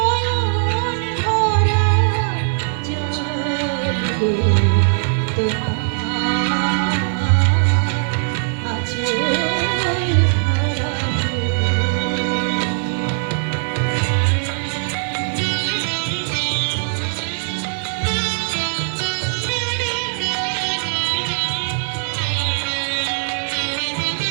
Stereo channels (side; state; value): left; silent; digital silence